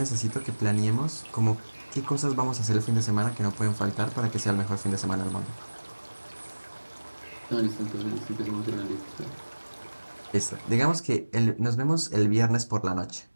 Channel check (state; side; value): inverted; both; correlation -1.00